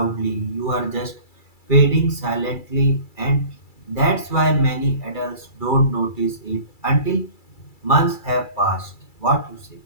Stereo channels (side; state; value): right; late; 2.3 ms